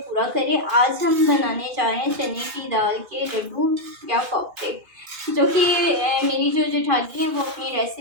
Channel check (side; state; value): left; late; 2.5 ms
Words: करे। आज हम बनाने जा रहे हैं चने की दाल के लड्डू या कोफ्ते, जो कि मेरी जो जेठानी है वो अपनी